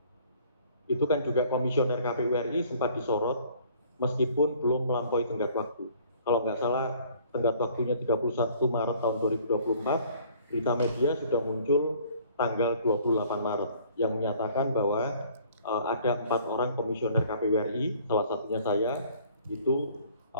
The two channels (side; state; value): both; inverted; correlation -0.56